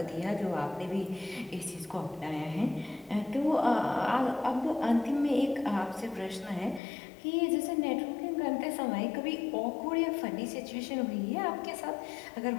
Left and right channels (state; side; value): drops out; right; at 6.8 s